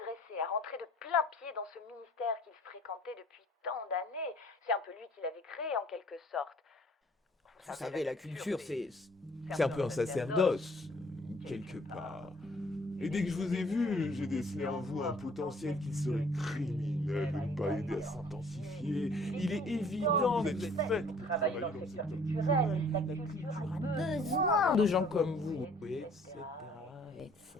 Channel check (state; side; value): normal; both; correlation 0.57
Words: à rentrer de plein pied dans ce ministère qu'il fréquentait depuis tant d'années. C'est un peu lui qui l'avait créé, en quelque sorte. Vous savez, la culture, c'est un peu un sacerdoce, quelque part. Et dès que je vous ai vu, j'ai décelé en vous un potentiel qui serait criminel de ne pas aider à s'intensifier. Il est évident que vous êtes fait pour travailler dans le secteur culturel. La culture a besoin de gens comme vous, etc., etc.